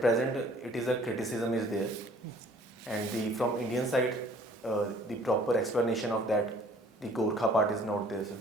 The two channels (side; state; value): both; normal; correlation 0.54